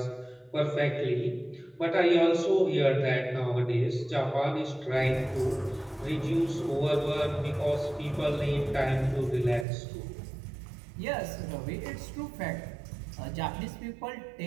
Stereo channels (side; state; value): left; drops out; at 9.7 s